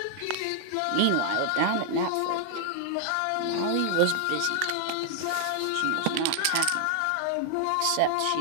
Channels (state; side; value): different; both; correlation 0.00